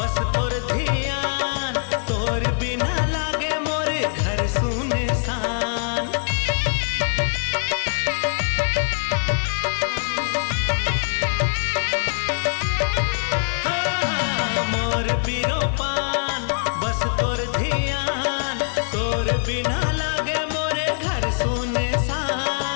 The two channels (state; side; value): silent; right; digital silence